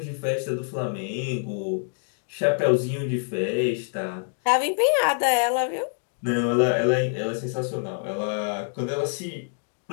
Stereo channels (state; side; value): silent; right; digital silence